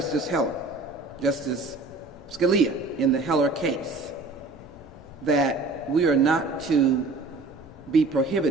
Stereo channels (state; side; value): quieter; left; 3.4 dB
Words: Scalia in the Heller case, that we are not to be